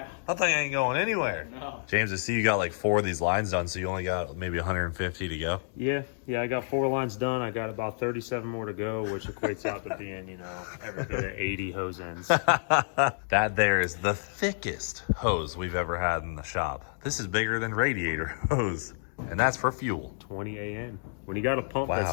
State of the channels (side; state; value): right; silent; digital silence